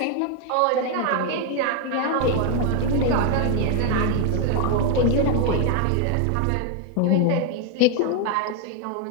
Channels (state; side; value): different; both; correlation 0.01